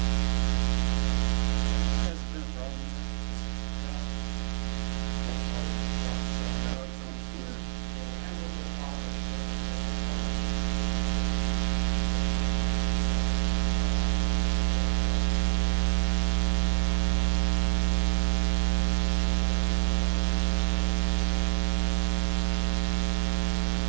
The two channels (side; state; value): left; silent; 60 dB below the other